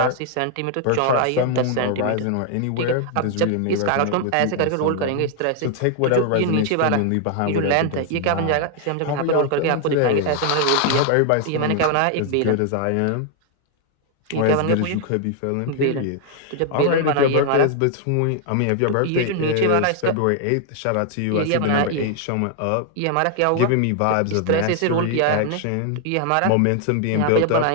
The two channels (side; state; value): both; different; correlation 0.00